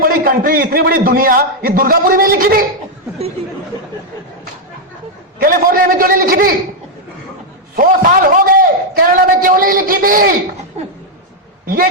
कंट्री, इतनी बड़ी दुनिया, ये दुर्गापुरी में लिखी थी, कैलिफोर्निया में क्यों नहीं लिखी थी? 100 साल हो गए, कनाडा में क्यों नहीं लिखी थी? ये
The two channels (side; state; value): both; normal; correlation -0.01